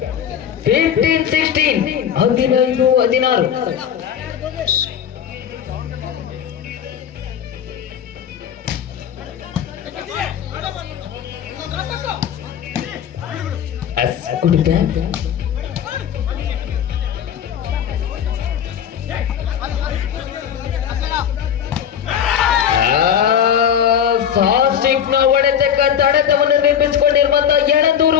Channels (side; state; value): right; quieter; 8.8 dB